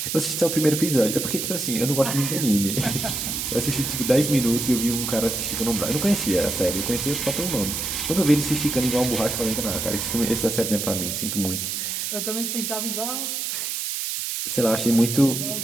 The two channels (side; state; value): right; noise; hiss, 3 dB below the sound